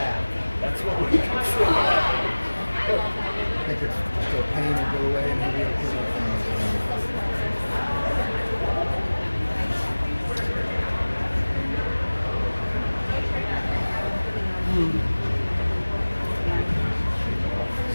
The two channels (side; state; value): both; inverted; correlation -1.00